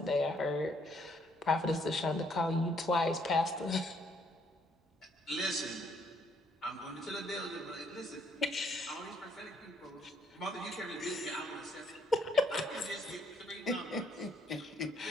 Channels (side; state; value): both; normal; correlation 0.68